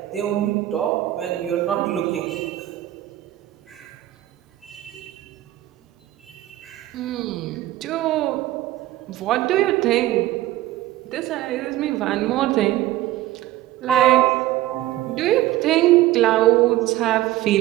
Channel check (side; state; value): left; quieter; 15.0 dB